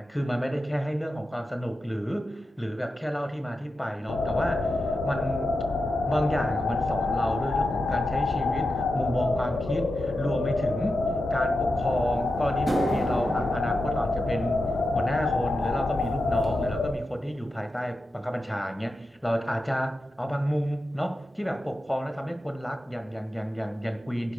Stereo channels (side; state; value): both; normal; correlation 0.90